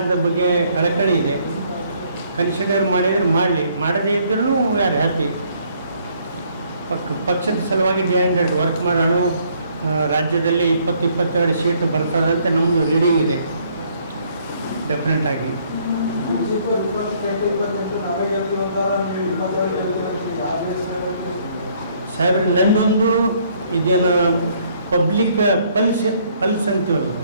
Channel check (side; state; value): both; inverted; correlation -0.65